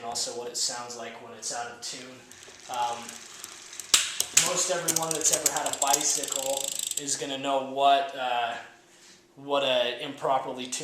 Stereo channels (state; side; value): identical; both; correlation 1.00